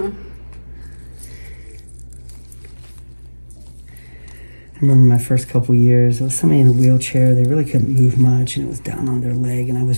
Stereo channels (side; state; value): both; inverted; correlation -1.00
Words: I remember my first couple years, there was somebody in a wheelchair. They really couldn't move much, and it was down on their leg, and I was